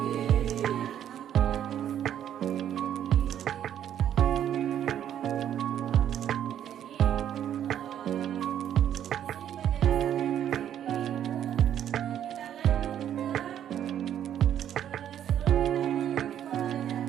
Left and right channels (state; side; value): quieter; left; 10.2 dB